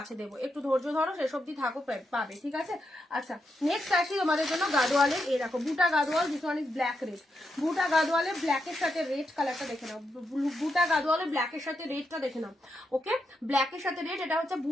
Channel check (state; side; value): normal; both; correlation 0.84